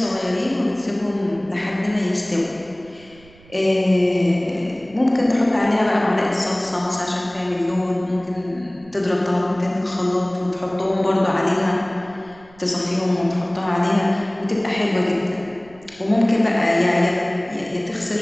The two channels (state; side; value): noise; right; rumble, 25 dB below the sound